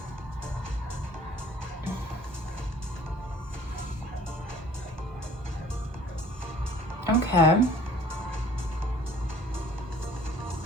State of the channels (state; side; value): normal; both; correlation 0.52